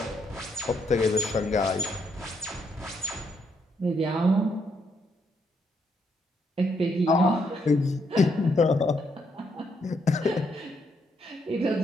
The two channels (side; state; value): both; normal; correlation 0.75